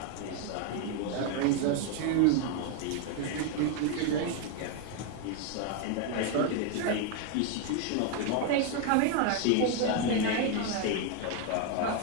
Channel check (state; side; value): different; both; correlation 0.01